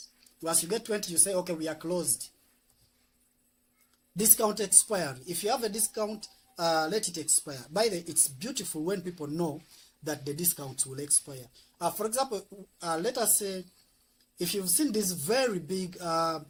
Once you get 20, you say, okay, we are closed. Discount expiry. If you have a discount, let it expire. By the way, it's beautiful when people know that the discounts will expire. For example, let us say, if you've seen these very big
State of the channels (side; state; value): both; identical; correlation 1.00